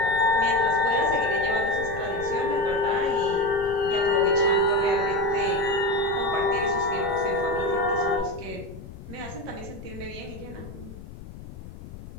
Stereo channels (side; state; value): left; noise; rumble, 14 dB below the sound